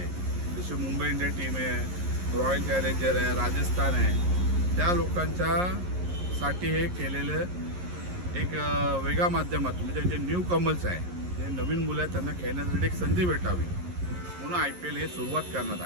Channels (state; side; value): late; left; 11 ms